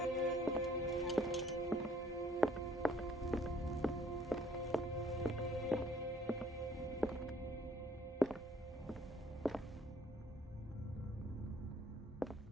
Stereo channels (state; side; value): normal; both; correlation 0.60